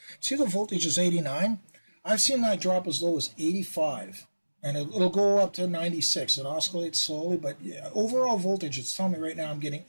See, the voltage is 89. I've seen that drop as low as 85. And it'll go up to 96. It oscillates slowly, but yeah, overall voltage, it's telling me right now I'm getting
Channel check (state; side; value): inverted; both; correlation -1.00